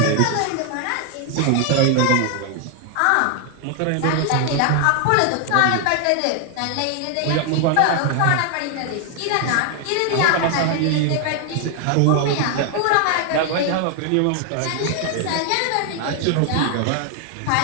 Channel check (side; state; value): both; different; correlation 0.00